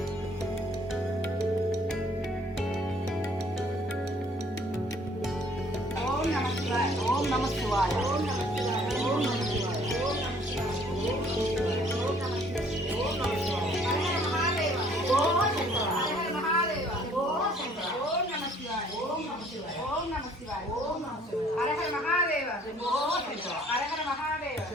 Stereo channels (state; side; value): normal; both; correlation 0.59